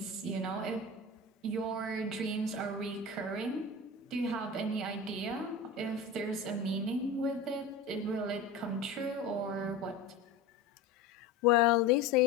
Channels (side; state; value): right; quieter; 3.4 dB